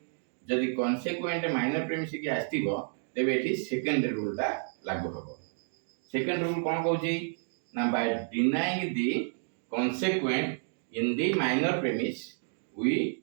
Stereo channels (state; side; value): silent; left; 57 dB below the other